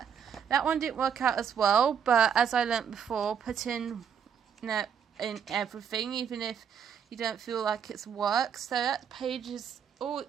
That one didn't work out as well, but as I learnt before, put in everything, even if you don't feel like it's work. So that page is all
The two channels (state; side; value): quieter; left; 7.6 dB